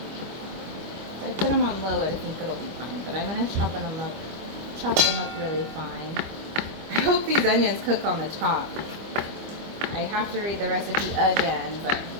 If I put them on low, I think it'll be fine. But I'm gonna chop them up really fine. I hope these onions cook on the top. I have to read the recipe again, but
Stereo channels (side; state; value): left; late; 25 ms